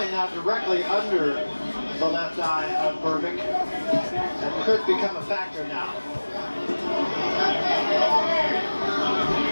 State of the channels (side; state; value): both; inverted; correlation -1.00